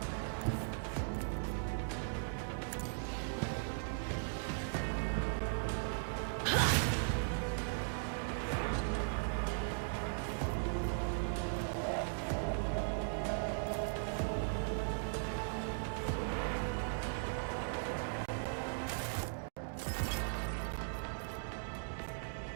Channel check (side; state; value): left; silent; digital silence